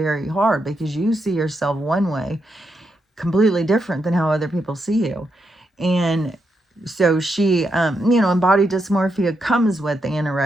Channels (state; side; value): normal; both; correlation 0.82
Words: hard, because you see yourself one way completely different than how other people see you. And so she, and body dysmorphia comes with